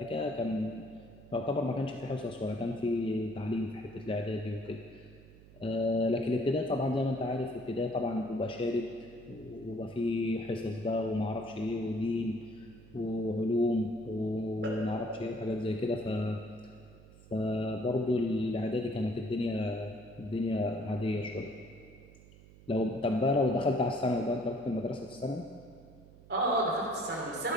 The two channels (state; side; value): noise; right; hum, 21 dB below the sound